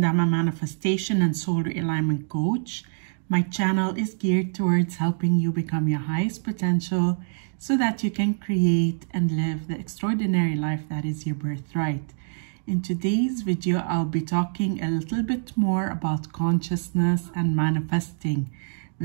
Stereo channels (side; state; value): left; silent; digital silence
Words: I'm a manifestation and soul realignment coach. My channel is geared towards helping you become your highest potential so that you can create and live the extraordinary life that is your birthright. In today's video, I'll be talking a little bit more about consciousness and manifesting.